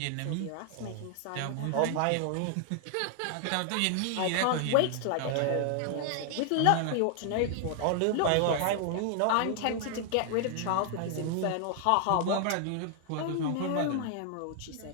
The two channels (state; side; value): different; both; correlation 0.00